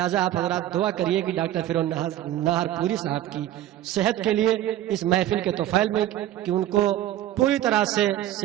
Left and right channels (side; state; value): left; quieter; 12.9 dB